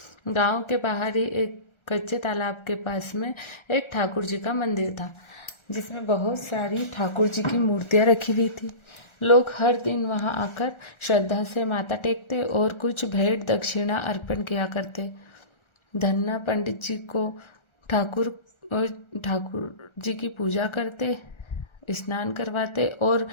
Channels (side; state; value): right; late; 1.4 ms